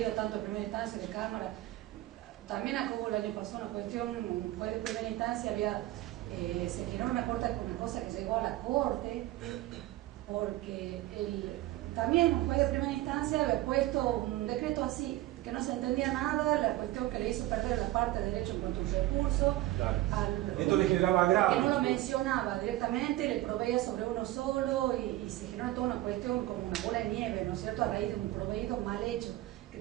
tanto de primera instancia de Cámara. También acá hubo el año pasado una cuestión, fue de primera instancia, se generó una cosa que llegó a la Corte, porque también un juez de primera instancia había puesto un decreto así, que no se entendía nada, la cuestión que le hizo perder la parte de derecho en cuanto a un recurso. Claro. Esto le generaba grave. Que no lo mencionaba directamente, le proveía sobre uno solo y se generó toda una cuestión como una bola de nieve, ¿no es cierto?, a raíz de un proveído mal hecho, que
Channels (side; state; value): left; quieter; 16.3 dB